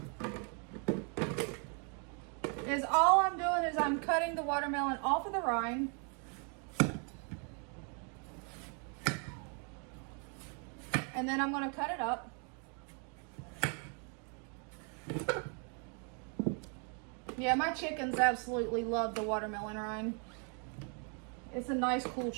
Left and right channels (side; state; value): left; quieter; 39.2 dB